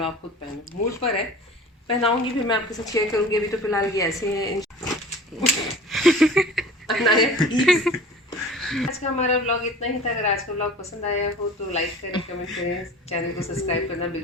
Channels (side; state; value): both; normal; correlation 0.41